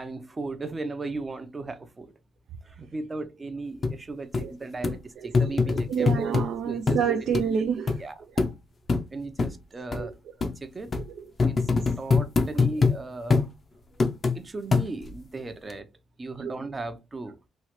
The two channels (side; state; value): both; normal; correlation 0.81